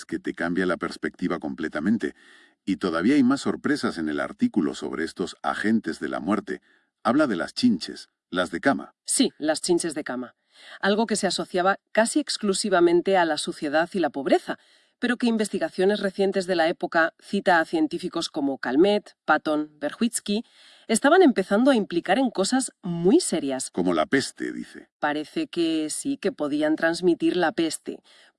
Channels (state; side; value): identical; both; correlation 1.00